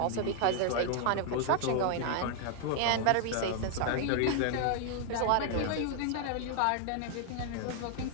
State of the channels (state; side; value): different; both; correlation 0.00